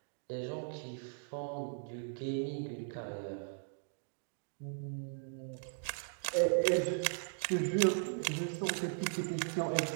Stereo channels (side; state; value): left; silent; digital silence